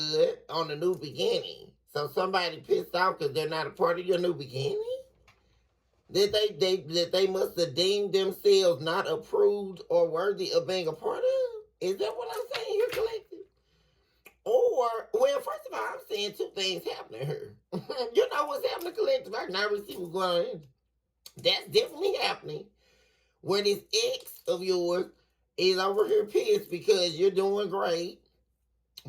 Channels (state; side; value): identical; both; correlation 1.00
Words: on the new beginning. So somebody pissed off because they're not a part of your new beginning? That they must have deemed themselves not approved or worthy of being a part of? Is that what I'm saying here, collective? Or, well, first of all, I'm seeing two things happening here. You know what's happening, collective? I can already see what's going on. That's definitely happening. Where this ex of yours is over here pissed because you're doing great.